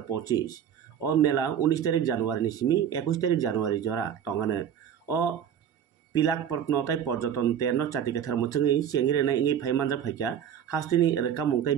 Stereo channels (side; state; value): left; quieter; 8.8 dB